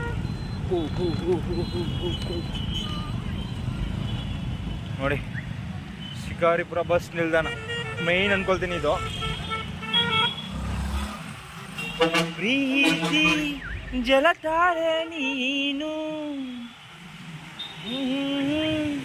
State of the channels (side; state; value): both; identical; correlation 1.00